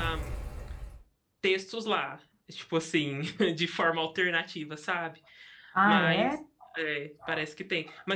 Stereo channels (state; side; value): identical; both; correlation 1.00